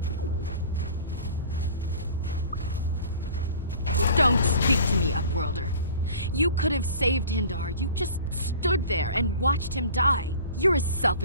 Don't speak to me, Upworlder. You could have saved Hindar. You just stood there and watched him die. You're as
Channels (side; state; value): both; inverted; correlation -0.43